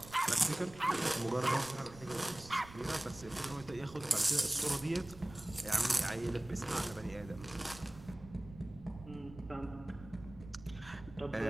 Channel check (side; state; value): right; noise; rumble, 17 dB below the sound